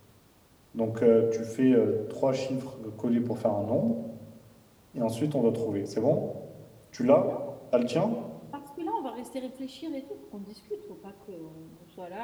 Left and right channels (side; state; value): both; identical; correlation 1.00